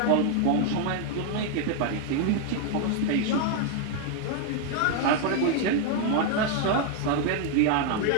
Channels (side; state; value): both; different; correlation 0.00